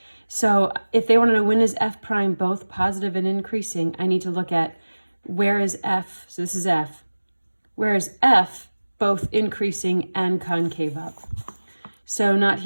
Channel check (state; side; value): inverted; both; correlation -1.00